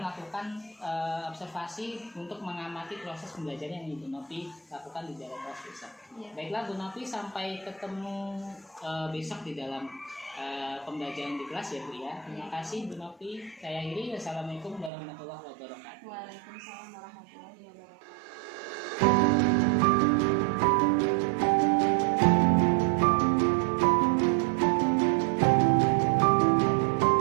melakukan observasi untuk mengamati proses pembelajaran yang Ibu Novi lakukan di dalam kelas besok. Iya. Baiklah Bu Novi, sampai ketemu besok di dalam pembelajaran di kelas ya Bu ya. Terima kasih Bu Novi. Saya akhiri. Wassalamualaikum warahmatullahi wabarakatuh. Waalaikumsalam warahmatullahi wabarakatuh.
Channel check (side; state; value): left; drops out; at 14.9 s